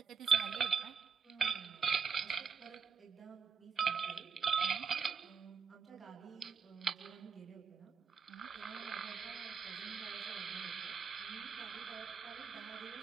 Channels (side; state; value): left; quieter; 5.9 dB